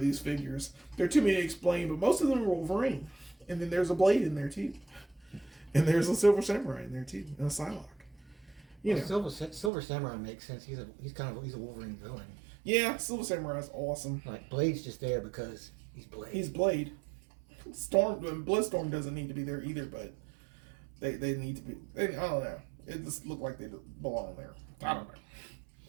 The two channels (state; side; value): drops out; left; at 9.7 s